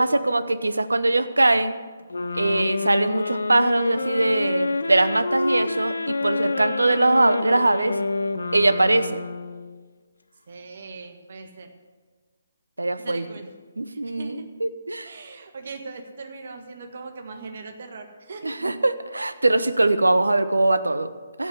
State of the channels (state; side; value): inverted; both; correlation -0.95